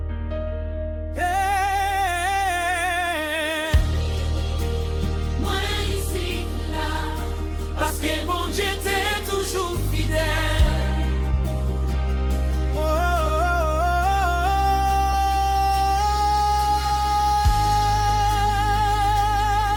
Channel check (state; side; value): identical; both; correlation 1.00